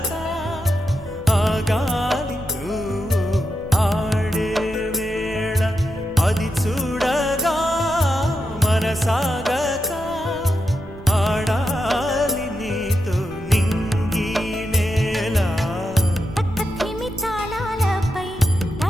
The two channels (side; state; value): right; noise; rumble, 16 dB below the sound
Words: ఆగాలి నువ్వు ఆడే వేళ, అది చూడగా మనసాగక ఆడాలి నీతో నింగి నేల. పక్కతిమి తాళాలపై